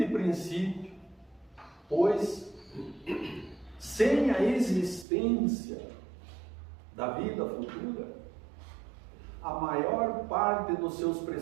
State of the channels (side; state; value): left; drops out; at 5.1 s